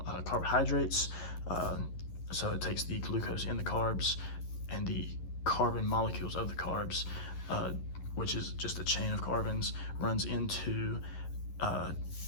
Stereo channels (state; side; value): late; right; 11 ms